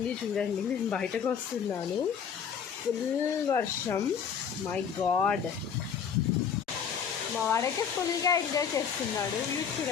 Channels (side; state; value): right; quieter; 7.2 dB